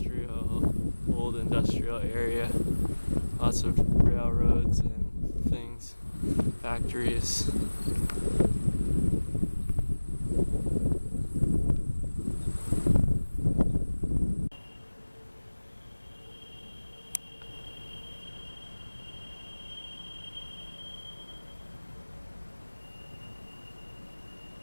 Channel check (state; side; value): inverted; both; correlation -1.00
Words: old industrial area. Lots of railroads and things, factories.